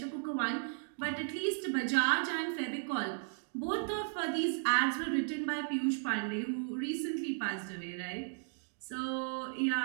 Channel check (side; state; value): left; silent; digital silence